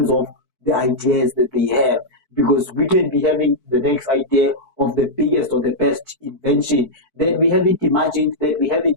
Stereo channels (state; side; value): late; right; 4.6 ms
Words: of the ideas that they have, because we can be having the next idea of the biggest or the best invention that we haven't imagined, that we haven't